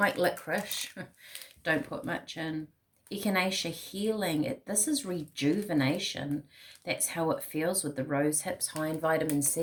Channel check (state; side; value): identical; both; correlation 1.00